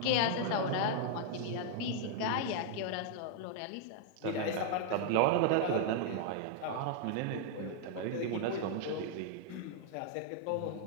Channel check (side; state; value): both; different; correlation -0.01